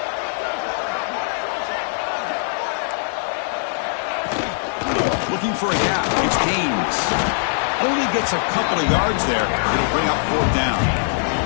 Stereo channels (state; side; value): silent; right; digital silence